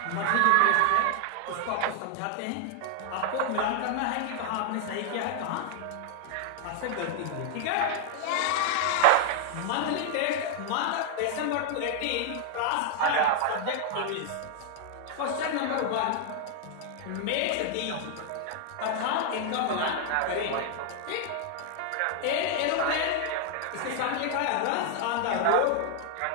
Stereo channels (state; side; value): different; both; correlation 0.00